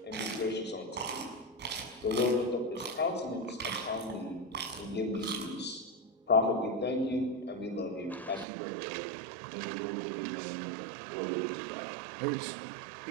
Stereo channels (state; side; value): drops out; left; at 8.5 s